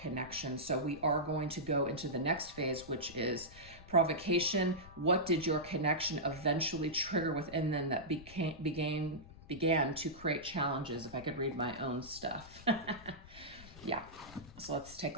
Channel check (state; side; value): noise; left; rumble, 18 dB below the sound